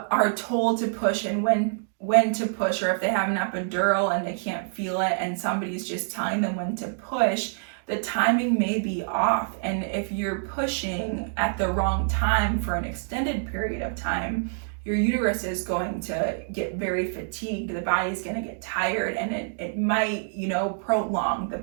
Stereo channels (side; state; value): left; silent; digital silence